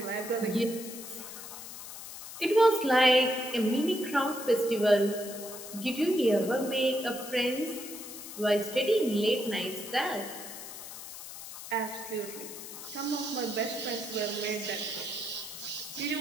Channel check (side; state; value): left; noise; hiss, 11 dB below the sound